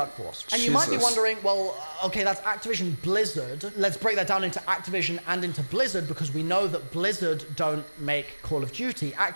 And you might be wondering, well, okay, that's Activision Blizzard. Let's break that down into Activision and into Blizzard, because we know that Blizzard don't make Call of Duty,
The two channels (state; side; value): inverted; both; correlation -1.00